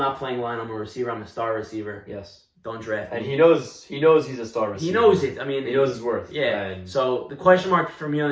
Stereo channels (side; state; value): both; identical; correlation 1.00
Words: playing line. I'm a receiver. I'm a star receiver. Yes. Don't draft me. And he knows he's a star receiver. He knows it. I mean, he knows his worth. Yeah. And so the question mark for me on